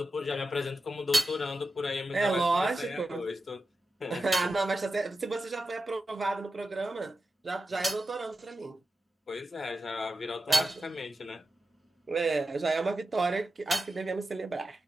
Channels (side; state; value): both; normal; correlation 0.90